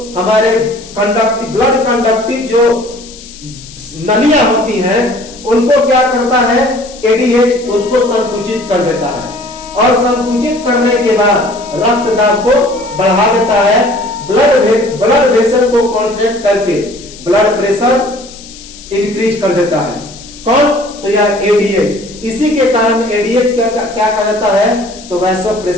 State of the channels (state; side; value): noise; left; hiss, 18 dB below the sound